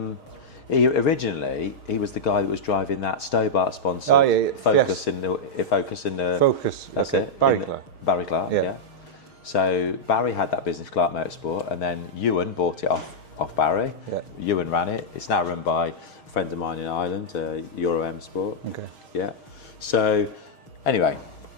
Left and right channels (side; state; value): right; late; 6.4 ms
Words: Originally he was the guy that was driving that Stobart sponsored Focus in the Focus. That's it. Barry Clark. Yeah. So Barry had that business, Clark Motorsport, and then Ewan bought it off Barry. Yeah. Ewan ran it. It's now run by a friend of mine in Ireland, Euro M Sport. Okay. Yeah. So anyway,